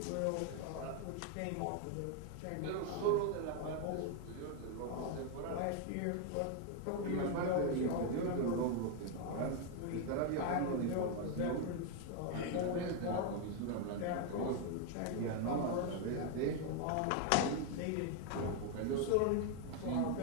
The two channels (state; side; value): different; both; correlation 0.01